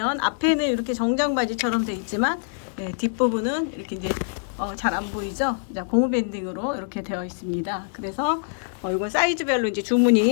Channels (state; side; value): silent; right; 62 dB below the other